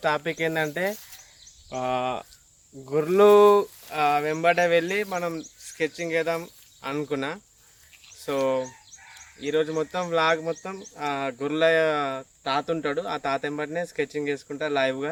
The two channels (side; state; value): both; identical; correlation 1.00